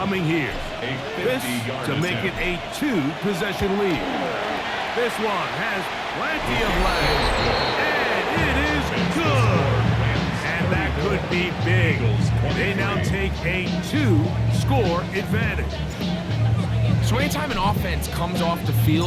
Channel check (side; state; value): both; identical; correlation 1.00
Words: here. This to make it a 2-possession lead. This one has plenty of legs, and it is good. And that could be big. They now take a 2-score advantage. So anytime an offense comes off the